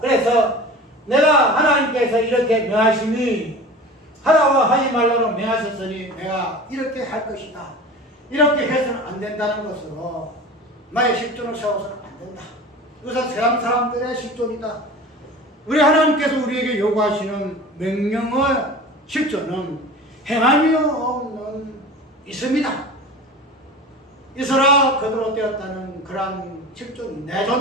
내가 하나님께서 이렇게 명하시니 하라고 하지 말라고 명하셨으니 내가 이렇게 할 것이다. 이렇게 해서는 안 된다는 것으로 나의 실존을 세워서는 안 된다. 이것은 세상 사람들의 실존이다. 우리 하나님께서 우리에게 요구하시는 명령의 실존은 행함이 없는 있음이다. 있어라 그대로 되었다는 그러한 실존이 내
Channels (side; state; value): both; normal; correlation 0.36